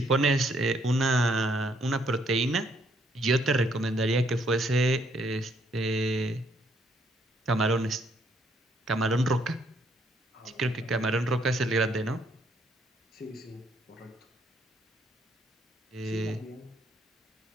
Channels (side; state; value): both; normal; correlation 0.69